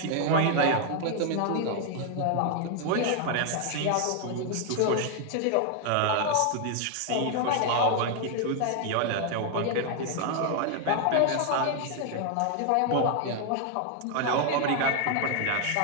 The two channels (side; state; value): both; different; correlation 0.00